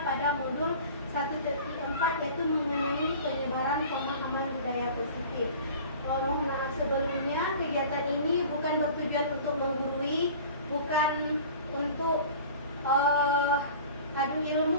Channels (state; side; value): inverted; both; correlation -0.42